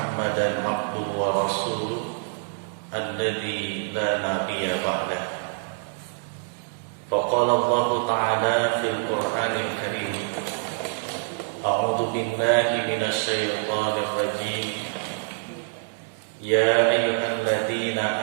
abduhu wa rasuluh alladzi la nabiyya ba'dah. Faqala Allah ta'ala fil Qur'anil Karim, a'udzu billahi minasy syaithanir rajim. Ya ayyuhalladzina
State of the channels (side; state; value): left; silent; 61 dB below the other